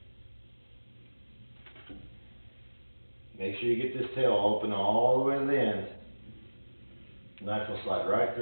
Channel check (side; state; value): both; inverted; correlation -1.00